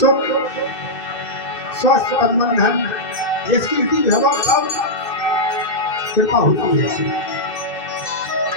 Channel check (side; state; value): right; late; 2.6 ms